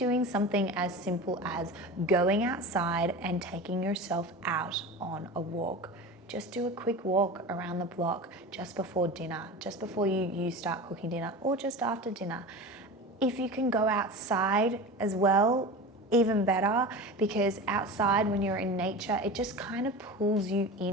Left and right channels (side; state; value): both; normal; correlation 0.30